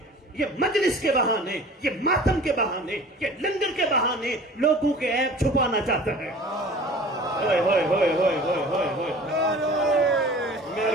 یہ مجلس کے بہانے، یہ ماتم کے بہانے، یہ لنگر کے بہانے لوگوں کے عیب چھپانا چاہتا ہے. ہوئے ہوئے ہوئے ہوئے ہوئے ہوئے ہوئے.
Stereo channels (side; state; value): both; normal; correlation 0.44